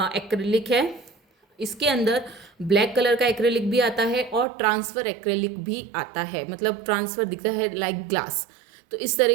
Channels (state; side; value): drops out; left; at 4.5 s